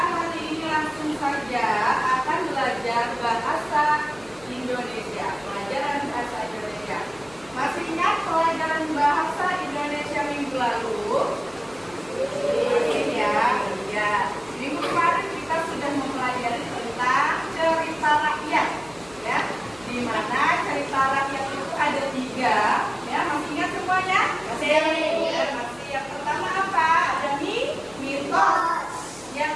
hari ini langsung saja akan belajar bahasa Indonesia, pelajaran bahasa Indonesia. Masih ingat pelajaran bahasa Indonesia minggu lalu? Ya. Minggu kemarin kita sudah mempelajari tentang cerita rakyat, ya. Di mana cerita rakyat itu ada 3, ya. Masih ingat semuanya? Masih. Yang pertama apa? Ada mitos. Yang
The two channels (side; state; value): left; noise; hum, 25 dB below the sound